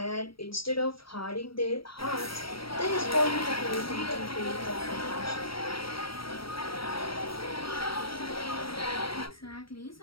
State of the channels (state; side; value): late; right; 0.75 ms